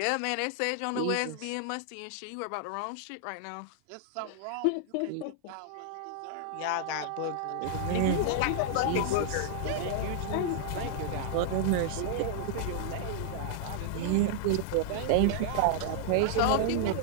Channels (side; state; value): both; different; correlation -0.01